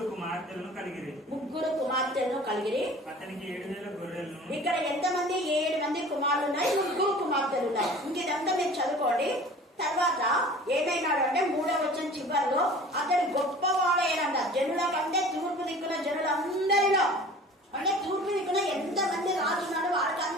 కుమార్తెలను కలిగిరి. అతనికి 7,000 గొర్రెలను. ఇక్కడ ఎంతమంది? 7 మంది కుమారులు ఉన్నాయి, 3 కుమార్తెలు ఉన్నాయి. ఇంకేదంతా మీరు చదువుకోండి. తర్వాత ఏమైనాడు అంటే 3వ వచనం చివరిలో అతడు గొప్పవాడైనంట. జనుల కంటే తూర్పు దిక్కున జనులందరిలో, అంటే తూర్పు దిక్కున ఎంతమంది రాజున్నాడు వాడికి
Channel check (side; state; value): both; normal; correlation 0.44